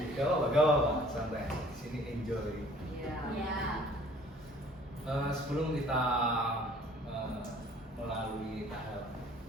Gak apa-apa, santai. Di sini enjoy. Iya. Ya. Sebelum kita melalui tahap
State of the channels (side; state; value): both; normal; correlation 0.54